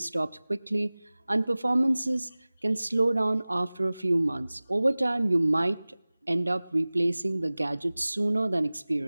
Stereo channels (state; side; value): inverted; both; correlation -0.99